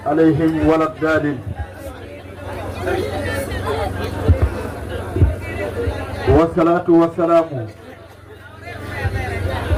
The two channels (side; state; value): both; identical; correlation 1.00